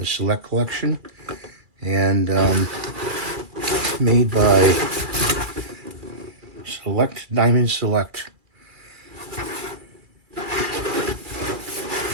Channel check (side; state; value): left; late; 2.3 ms